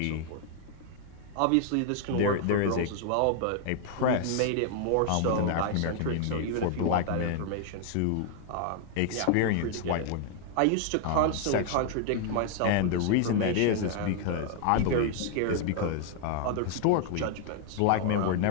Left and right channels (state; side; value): different; both; correlation 0.00